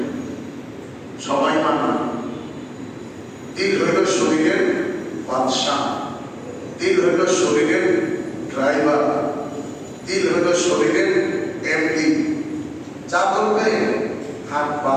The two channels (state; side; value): identical; both; correlation 1.00